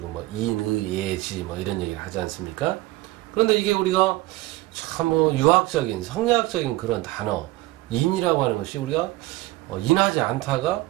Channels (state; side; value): quieter; left; 18.7 dB